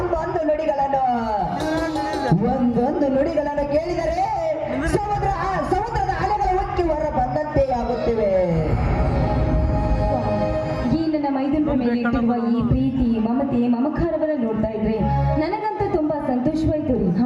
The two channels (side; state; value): both; identical; correlation 1.00